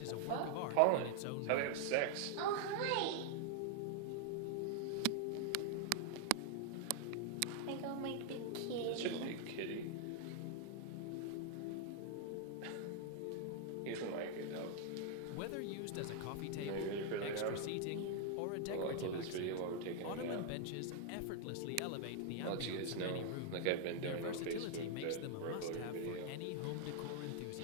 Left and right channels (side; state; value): both; different; correlation 0.00